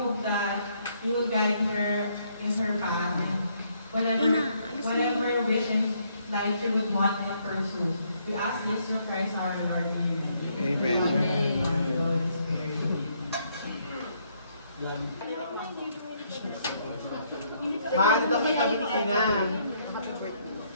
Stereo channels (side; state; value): both; inverted; correlation -0.71